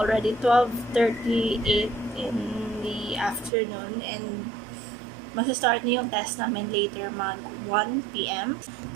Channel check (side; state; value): left; drops out; at 3.5 s